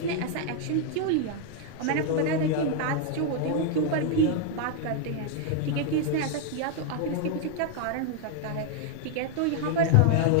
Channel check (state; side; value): different; both; correlation 0.00